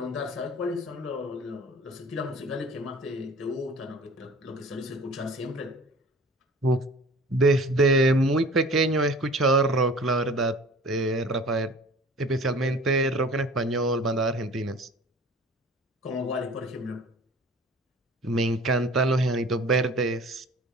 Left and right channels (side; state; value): both; normal; correlation 0.44